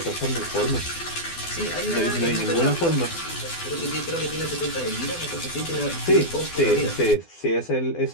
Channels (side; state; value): right; late; 12 ms